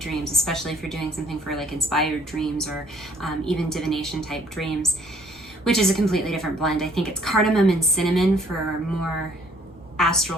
especially if you're doing something for like inspired dreams or even divination type dreams, which is a completely different blend. I think it's cardamom and cinnamon for more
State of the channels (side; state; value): both; normal; correlation 0.61